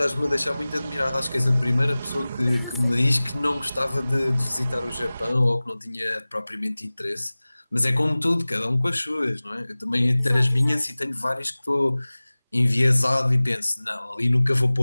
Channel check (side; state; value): both; inverted; correlation -0.99